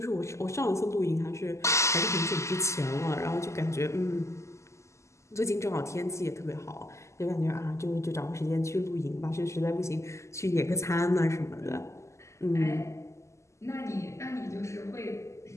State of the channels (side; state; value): right; late; 0.14 ms